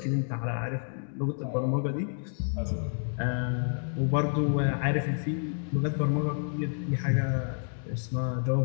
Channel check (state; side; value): silent; right; digital silence